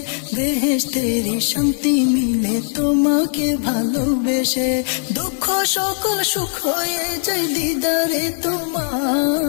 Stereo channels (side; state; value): right; silent; digital silence